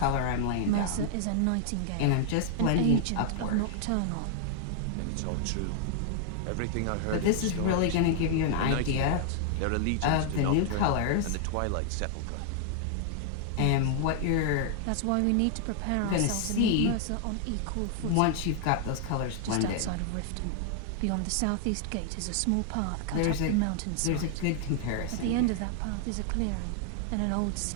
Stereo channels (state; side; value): different; both; correlation 0.00